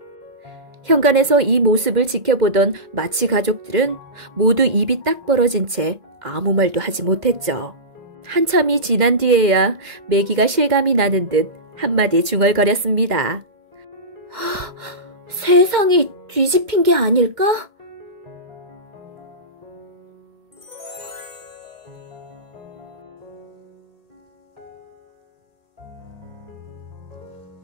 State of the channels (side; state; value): left; late; 2.1 ms